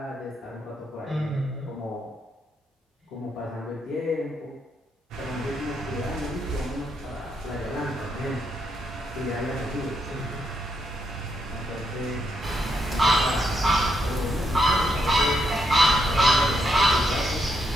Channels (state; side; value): normal; both; correlation 0.78